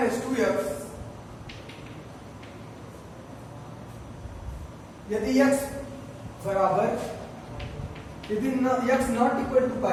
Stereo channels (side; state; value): both; identical; correlation 1.00